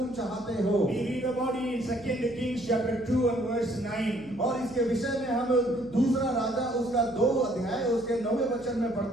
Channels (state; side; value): noise; left; hum, 23 dB below the sound